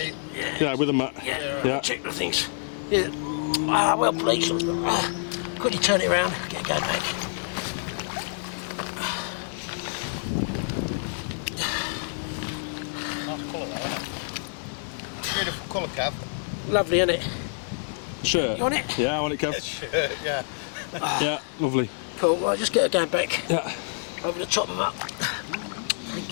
Yeah, with a mat. Yeah. Check the things. Yeah. Ah, well, please. Quickly turn it around. Get going back. Nice colour though, isn't it? Beautiful colour, Cav. Lovely, isn't it? Sure. You want it? Yeah, I want it, Kev. Yeah. Yeah, lovely. Cool. Right, just get her going back. Yeah. Over the top of them up.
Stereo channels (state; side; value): silent; right; digital silence